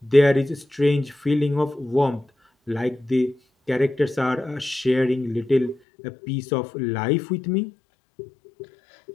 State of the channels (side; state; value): right; drops out; at 5.8 s